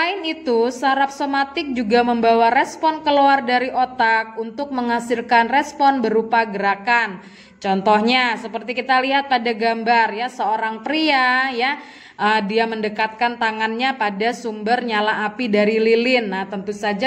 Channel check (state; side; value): identical; both; correlation 1.00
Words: itu, saraf somatik juga membawa respon keluar dari otak untuk menghasilkan respon berupa gerakan. Contohnya seperti kita lihat pada gambar ya, seorang pria ya, dia mendekatkan tangannya pada sumber nyala api dari lilin. Nah, tentu